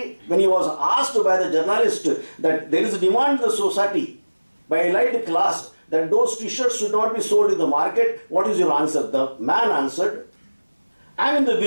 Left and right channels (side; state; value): both; inverted; correlation -1.00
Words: when he was asked by the journalist that there is a demand in the society by elite class that those t-shirts should not be sold in the market, what is your answer? The man answered, I am in the